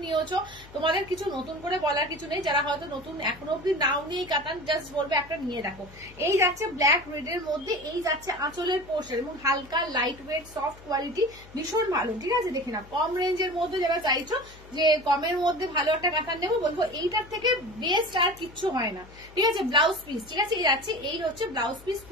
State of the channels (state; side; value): noise; left; hum, 21 dB below the sound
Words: নিয়েছো, তোমাদের কিছু নতুন করে বলার কিছু নেই। যারা হয়তো নতুন এখনো অব্দি নাও নিয়ে কাতান, জাস্ট বলবে একটা নিয়ে দেখো। এই যাচ্ছে ব্ল্যাক রেডের মধ্যে, এই যাচ্ছে আঁচলের পোর্শন, এবং হালকা লাইট ওয়েট সফট কোয়ালিটি, ভীষণ ভালো, ঠিক আছে? দেখে না, কম রেঞ্জের মধ্যে যারা চাইছো যে কমের মধ্যে ভালো একটা কাতান নেবো, বলবো এইটার থেকে বেস্ট আর কিচ্ছু হয় না, ঠিক আছে? ব্লাউজ পিস, ঠিক আছে? এই যাচ্ছে, এই হচ্ছে ব্লাউজ পিস,